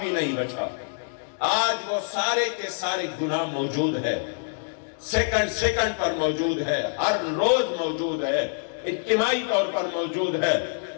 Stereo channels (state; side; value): silent; right; digital silence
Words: نہیں بچا۔ آج وہ سارے کے سارے گناہ موجود ہے، سیکنڈ پر موجود ہے، ہر روز موجود ہے، اجتماعی طور پر موجود ہے،